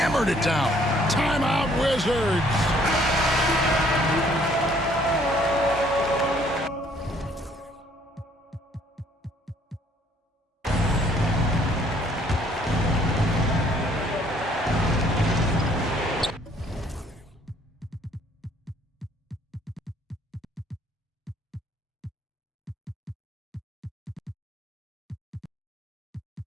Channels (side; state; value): both; normal; correlation 0.62